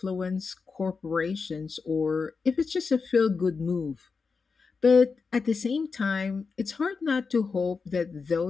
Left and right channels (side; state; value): right; quieter; 4.9 dB